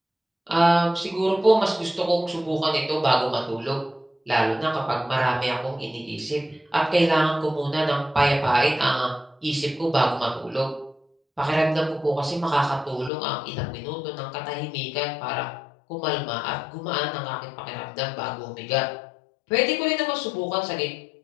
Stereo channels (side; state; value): right; drops out; at 13.1 s